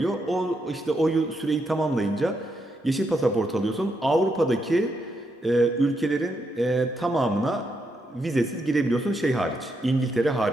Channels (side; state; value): both; normal; correlation 0.80